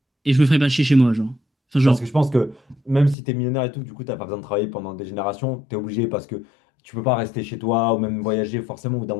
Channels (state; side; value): drops out; right; at 3.2 s